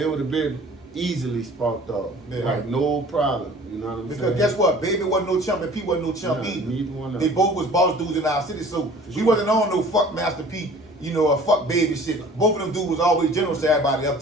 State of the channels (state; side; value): normal; both; correlation 0.48